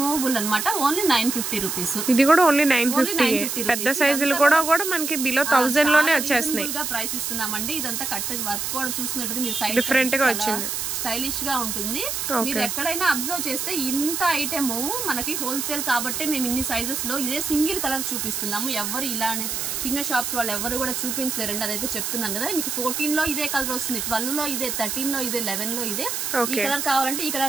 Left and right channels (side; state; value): right; noise; hiss, 2 dB below the sound